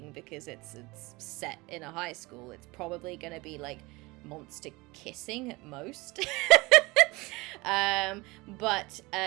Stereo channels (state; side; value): quieter; left; 23.2 dB